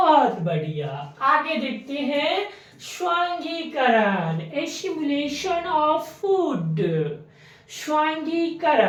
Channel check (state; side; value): identical; both; correlation 1.00